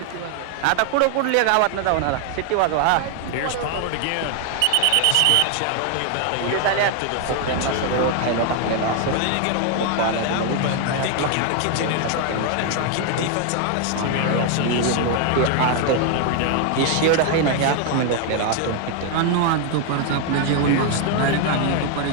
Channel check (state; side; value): different; both; correlation 0.00